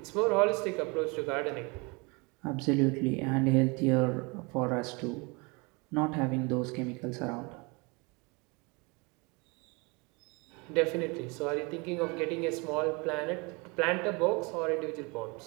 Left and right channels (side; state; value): left; quieter; 28.6 dB